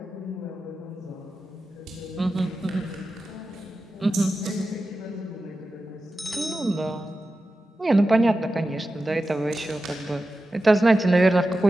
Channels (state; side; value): normal; both; correlation 0.92